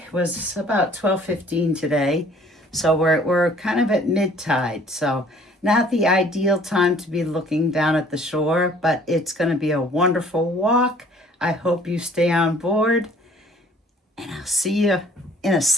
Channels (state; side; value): normal; both; correlation 0.55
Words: was about 12:15 today. So we're kind of at mid-tide. So not the ideal time to be looking down at the shore, but it's going to be a wonderful walk. I hope you stay on board, and I'll see you in a